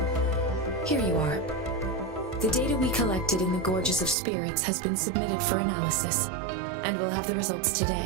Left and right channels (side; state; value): left; drops out; at 4.2 s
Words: Here you are. The data we collected in the Gorges of Spirits has been submitted for analysis, and we'll have the results